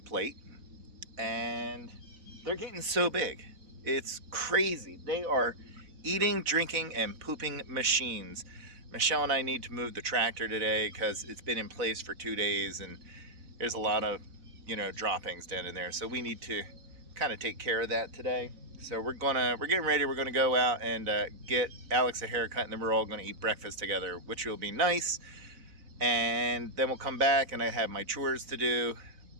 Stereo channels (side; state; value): left; late; 4.0 ms